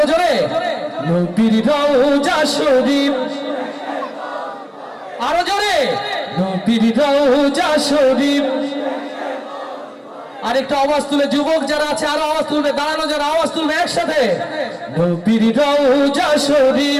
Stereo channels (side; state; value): both; identical; correlation 1.00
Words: জোরে নবীর রওজা শরীফ, আরো জোরে নবীর রওজা শরীফ। আরেকটা আওয়াজ তুলে যুবক যারা আছে আরো আওয়াজ তুলবে, দাঁড়ানো যারা আওয়াজ তুলবে একসাথে নবীর রওজা